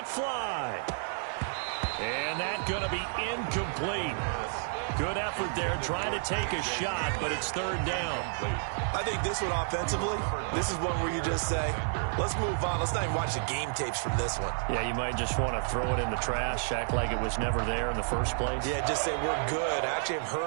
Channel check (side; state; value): left; silent; 57 dB below the other